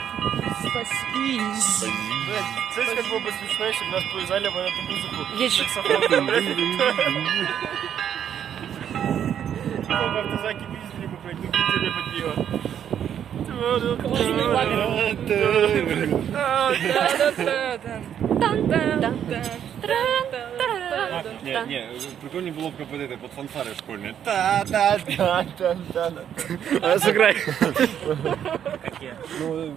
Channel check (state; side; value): quieter; left; 9.3 dB